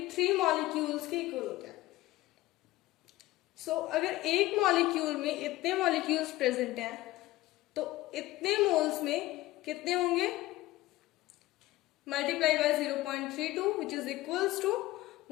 molecules के इक्वल होता है। सो अगर एक मॉलिक्यूल में इतने मॉलिक्यूल्स प्रेजेंट हैं तो इतने मोल्स में कितने होंगे? multiply by 0.32 which is equals to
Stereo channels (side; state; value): right; quieter; 17.3 dB